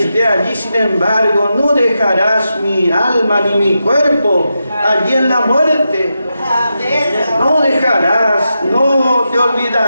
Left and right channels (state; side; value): inverted; both; correlation -0.88